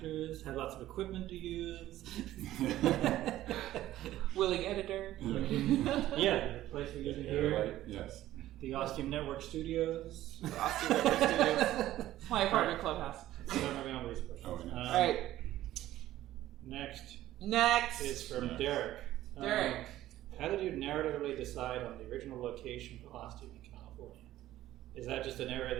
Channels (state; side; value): quieter; left; 14.2 dB